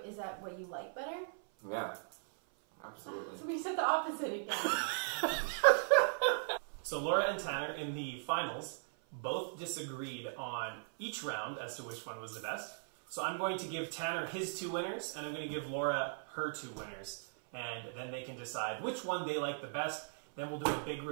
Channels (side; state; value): left; silent; 52 dB below the other